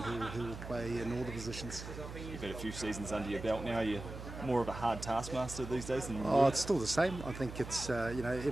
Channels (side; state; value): right; noise; hum, 10 dB below the sound